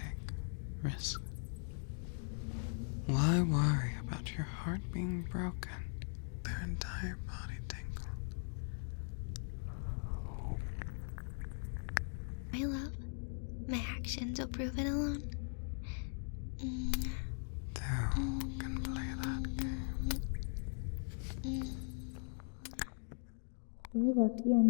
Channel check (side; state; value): right; silent; 51 dB below the other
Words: risks? Why worry about your heart being broken? Their entire body tingled. My love, my actions will prove it alone. Two can play that game. You're lucky I'm